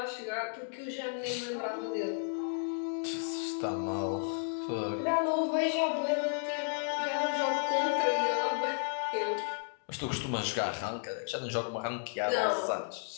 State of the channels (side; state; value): right; silent; digital silence